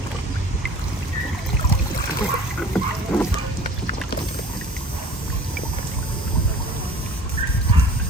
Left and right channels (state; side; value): normal; both; correlation 0.46